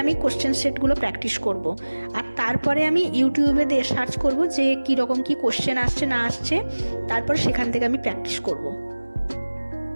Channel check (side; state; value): both; inverted; correlation -1.00